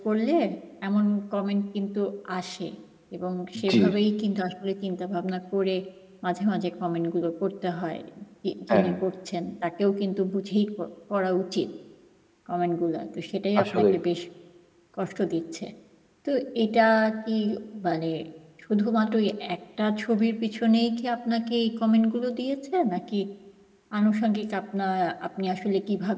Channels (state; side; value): identical; both; correlation 1.00